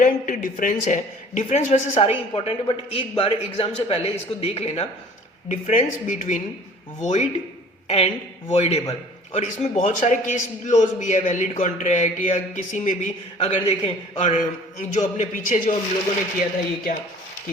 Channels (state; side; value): normal; both; correlation 0.48